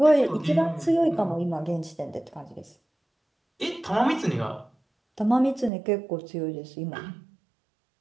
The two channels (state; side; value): drops out; left; at 5.7 s